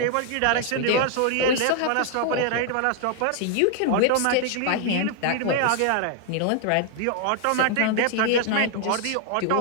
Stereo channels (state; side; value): different; both; correlation 0.00